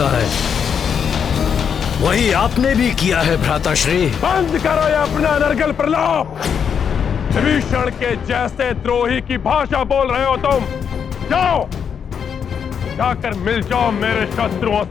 है। वही आपने भी किया है भ्राताश्री। बंद करो ये अपना नरगल प्रलाप। विभीषण के जैसे द्रोही की भाषा बोल रहे हो तुम। जाओ, जाकर मिल जाओ मेरे शत्रुओं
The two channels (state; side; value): quieter; right; 7.3 dB